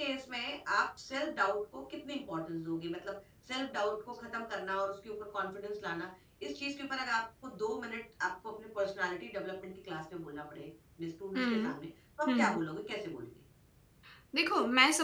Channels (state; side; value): identical; both; correlation 1.00